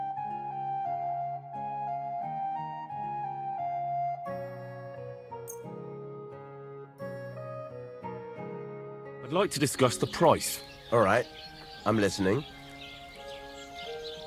I'd like to discuss the price. All right, I'm listening.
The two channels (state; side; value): identical; both; correlation 1.00